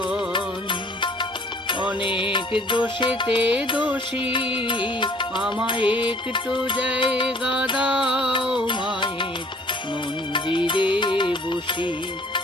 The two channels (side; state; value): both; normal; correlation 0.56